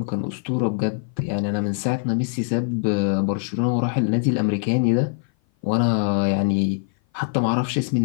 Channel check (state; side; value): silent; right; 56 dB below the other